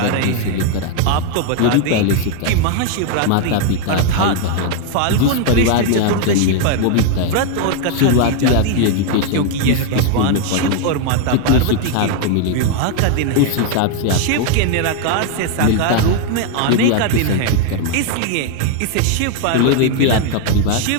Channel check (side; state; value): both; different; correlation 0.01